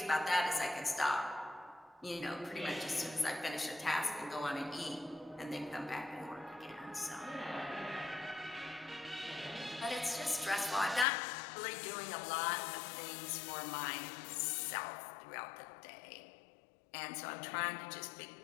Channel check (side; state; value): right; drops out; at 11.1 s